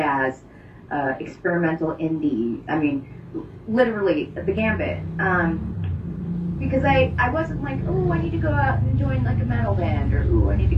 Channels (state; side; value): identical; both; correlation 1.00